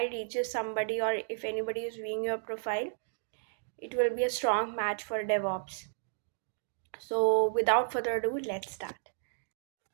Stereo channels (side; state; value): left; silent; digital silence